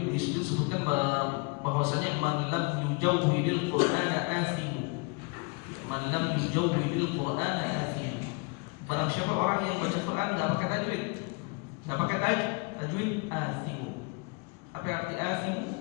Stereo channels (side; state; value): right; quieter; 31.8 dB